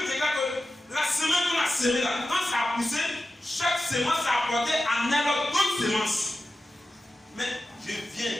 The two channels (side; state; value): both; normal; correlation 0.93